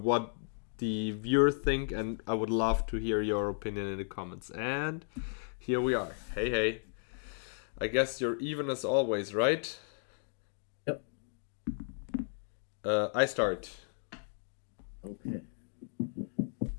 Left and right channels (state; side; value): silent; right; digital silence